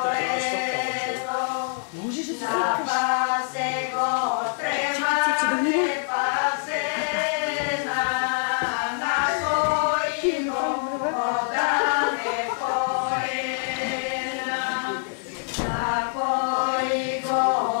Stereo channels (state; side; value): silent; right; 62 dB below the other